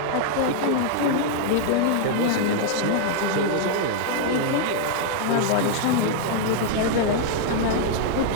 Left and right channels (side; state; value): both; different; correlation -0.01